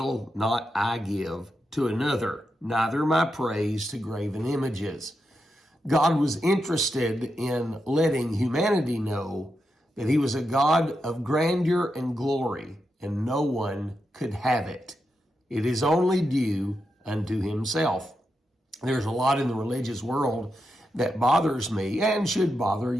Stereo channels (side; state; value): both; normal; correlation 0.86